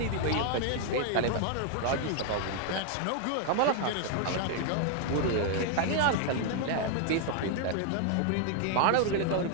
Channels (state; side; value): different; both; correlation 0.00